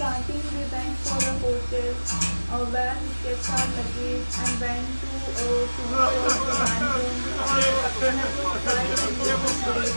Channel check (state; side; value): inverted; both; correlation -1.00